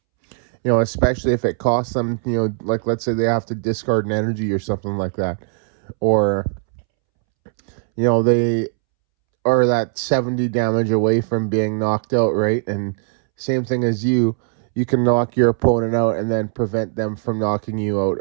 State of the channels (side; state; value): left; silent; 66 dB below the other